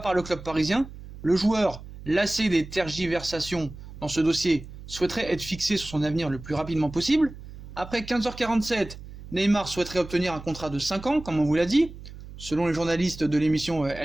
le club parisien. Le joueur, lassé des tergiversations dans ce dossier, souhaiterait être fixé sur son avenir le plus rapidement possible. Après 15h47, Neymar souhaiterait obtenir un contrat de 5 ans, comme on vous l'a dit. Selon les journalistes de l'émission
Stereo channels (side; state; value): right; noise; hum, 15 dB below the sound